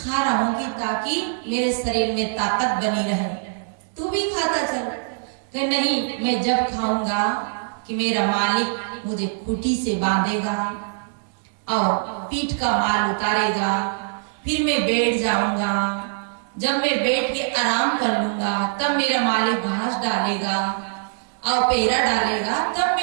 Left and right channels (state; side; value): silent; left; digital silence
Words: रहा हूं कि ताकि मेरे शरीर में ताकत बनी रहे। तू भी खाता चल। कि नहीं, मैं जब खाऊंगा कि मेरा मालिक मुझे खूंटी से बांधेगा और पीठ का माल उतारेगा, फिर मैं बैठ जाऊंगा। जब मैं बैठ के आराम कर लूंगा तब मेरा मालिक घास डालेगा और पेहरा डालेगा, तब